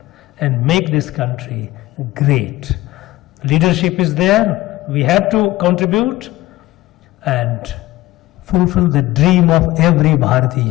and make this country great. Leadership is there, we have to contribute and fulfill the dream of every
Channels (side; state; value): right; quieter; 17.4 dB